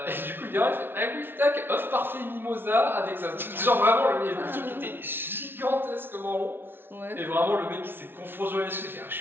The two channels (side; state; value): left; late; 0.11 ms